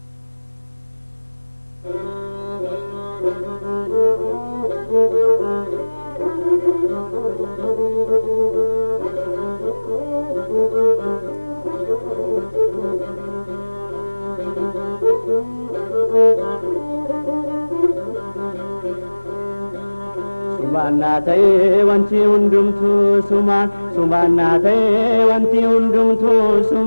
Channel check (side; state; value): both; inverted; correlation -1.00